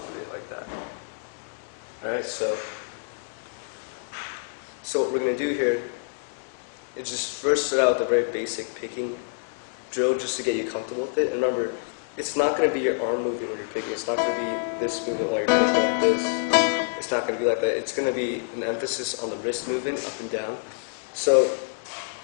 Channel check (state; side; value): silent; right; digital silence